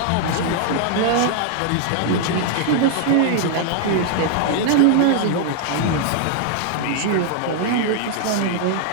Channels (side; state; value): both; different; correlation 0.00